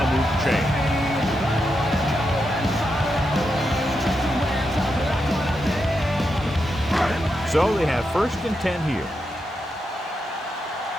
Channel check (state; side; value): normal; both; correlation 0.85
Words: move the chain. So they have 1st and 10 here.